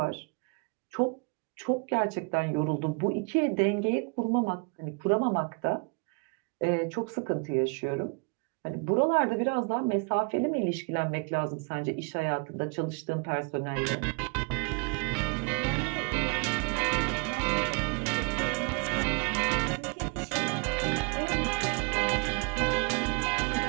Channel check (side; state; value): left; quieter; 33.9 dB